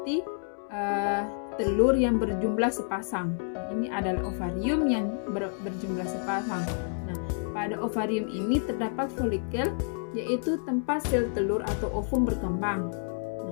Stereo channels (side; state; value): right; silent; 59 dB below the other